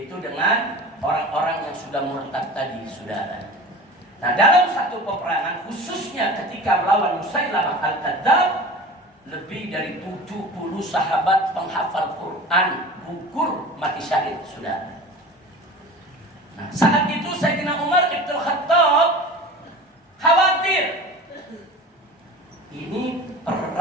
dengan orang-orang yang sudah murtad tadi, saudara. Nah dalam satu peperangan, khususnya ketika melawan Musailamah al-Kadzdzab, lebih dari 70 sahabat penghafal Quran gugur mati syahid, saudara. Nah, saat itu Sayyidina Umar Ibn Khattab khawatir. Ini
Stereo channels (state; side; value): normal; both; correlation 0.37